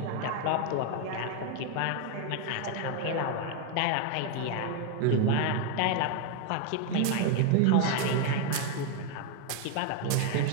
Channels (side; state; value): both; different; correlation 0.01